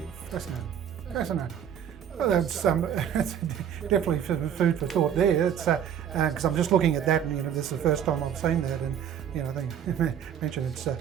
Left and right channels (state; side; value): quieter; left; 9.0 dB